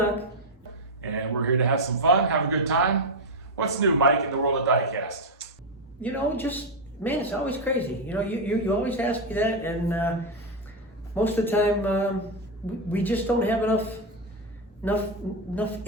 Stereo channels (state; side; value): normal; both; correlation 0.06